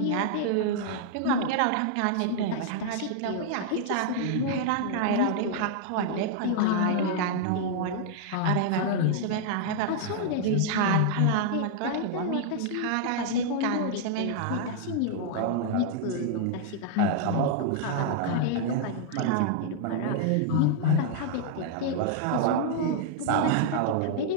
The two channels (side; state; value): both; different; correlation -0.01